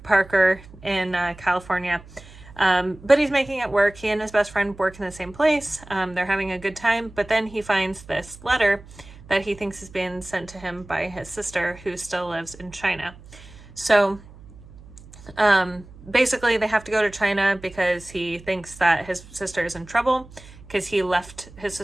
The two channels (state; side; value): noise; right; hum, 20 dB below the sound